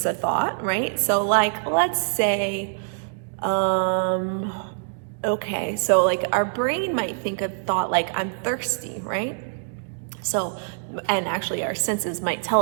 a thought, right? So like, let's say, okay, so like our brain might think a thought like, I'm thirsty, right? So, and actually our senses might tell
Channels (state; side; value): silent; left; digital silence